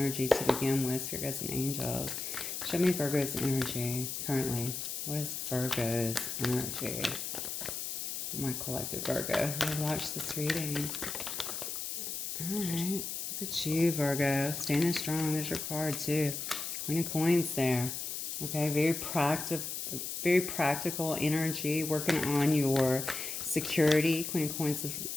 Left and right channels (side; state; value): left; noise; hiss, 4 dB below the sound